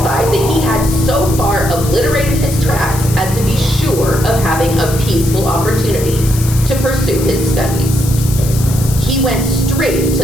that he had so far obliterated his tracks as to be sure of having a peaceful opportunity to pursue his studies. He went straight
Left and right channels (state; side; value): noise; left; hiss, 10 dB below the sound